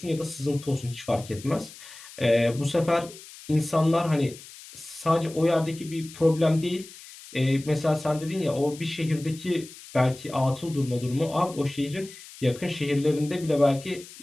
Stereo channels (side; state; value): left; noise; hiss, 17 dB below the sound